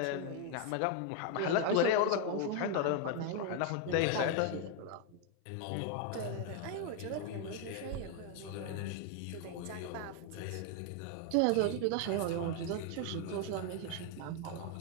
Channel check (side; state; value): both; different; correlation 0.01